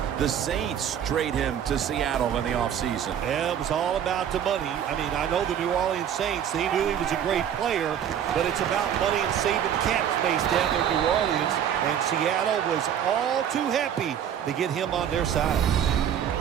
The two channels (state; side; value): quieter; left; 9.3 dB